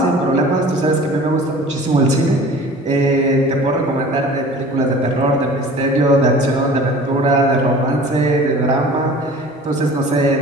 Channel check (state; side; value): normal; both; correlation 0.44